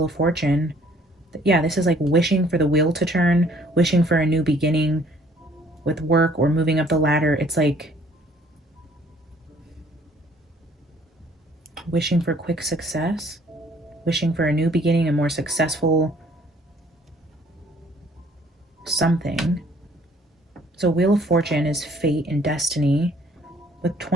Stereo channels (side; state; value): both; normal; correlation 0.59